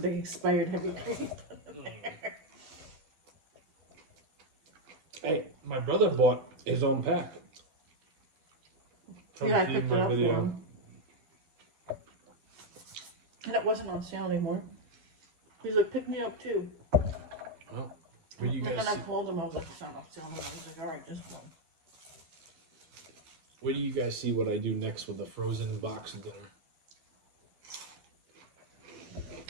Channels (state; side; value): late; left; 12 ms